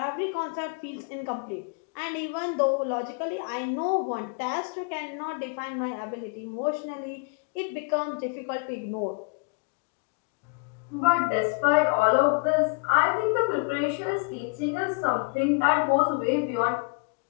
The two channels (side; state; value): right; quieter; 33.0 dB